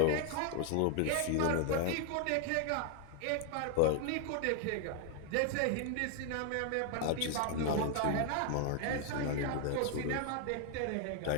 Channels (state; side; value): different; both; correlation 0.00